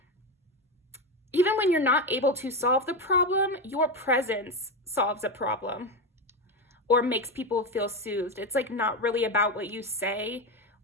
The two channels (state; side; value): normal; both; correlation 0.14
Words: even when you're not able to solve the problem, your presence solves a problem or makes people feel soothed. It's like not really about what you say